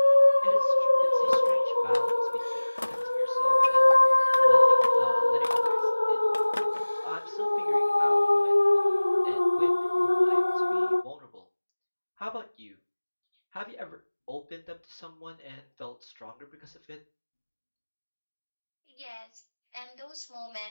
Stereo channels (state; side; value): inverted; both; correlation -1.00